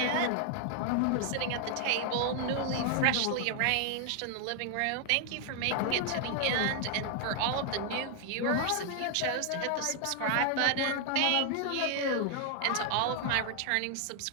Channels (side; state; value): both; different; correlation 0.00